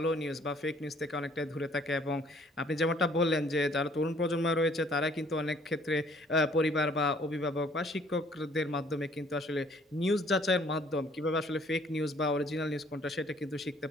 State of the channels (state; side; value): normal; both; correlation 0.59